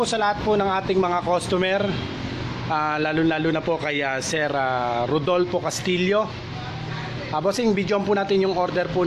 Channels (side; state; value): both; identical; correlation 1.00